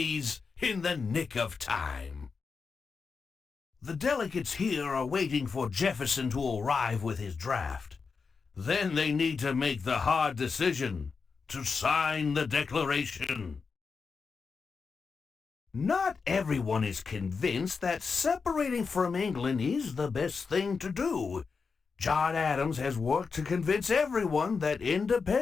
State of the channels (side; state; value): right; quieter; 5.1 dB